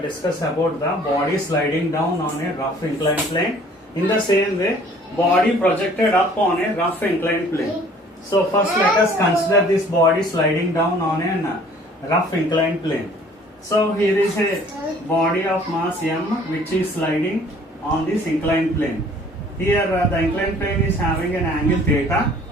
discuss about the body sliding down on a rough inclined plane. In the same way, body projected up on a rough inclined plane. So first let us consider this body sliding down on a rough inclined plane. So here is a body of mass m which is sliding on this inclined plane. Here the inclined plane is having an angle theta.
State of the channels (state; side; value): normal; both; correlation 0.54